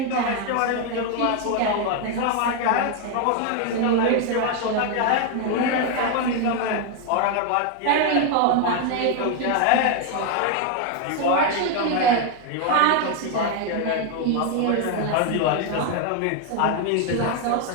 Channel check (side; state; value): both; different; correlation 0.01